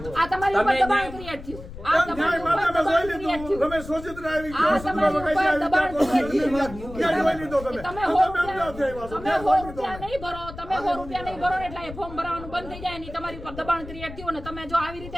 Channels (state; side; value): noise; left; rumble, 13 dB below the sound